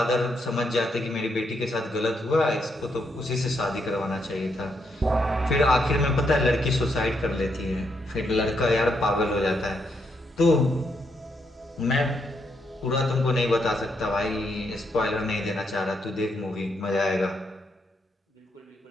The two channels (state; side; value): normal; both; correlation 0.78